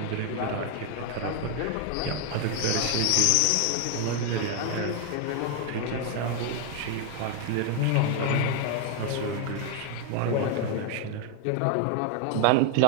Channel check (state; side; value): different; both; correlation 0.00